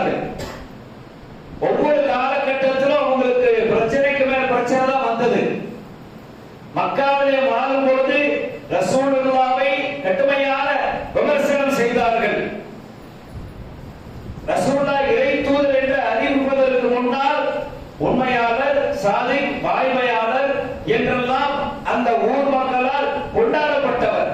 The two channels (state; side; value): identical; both; correlation 1.00